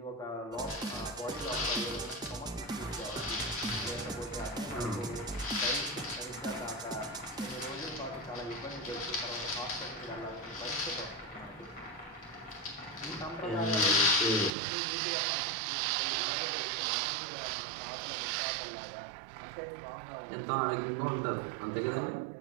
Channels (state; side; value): drops out; left; at 14.5 s